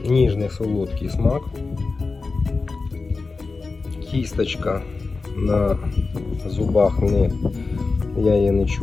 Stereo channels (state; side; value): quieter; right; 4.0 dB